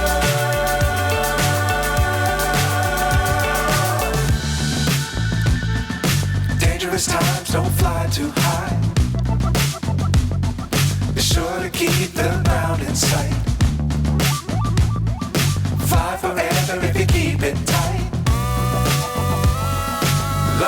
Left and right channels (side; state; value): both; identical; correlation 1.00